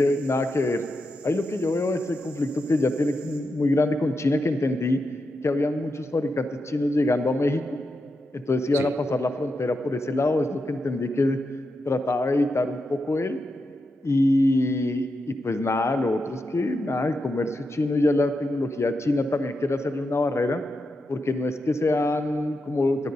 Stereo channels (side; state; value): both; normal; correlation 0.86